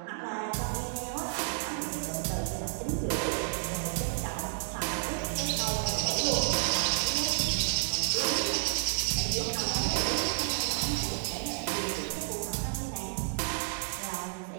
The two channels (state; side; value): silent; left; digital silence